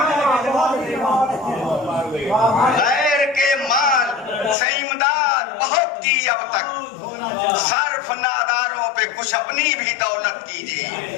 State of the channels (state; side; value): drops out; right; at 4.5 s